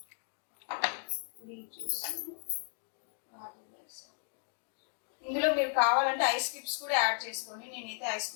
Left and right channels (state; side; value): silent; right; 54 dB below the other